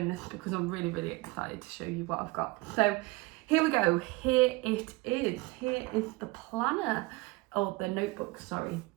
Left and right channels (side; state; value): left; quieter; 22.8 dB